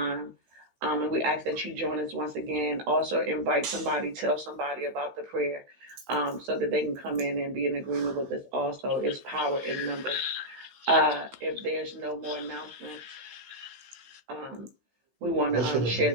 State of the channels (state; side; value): late; left; 16 ms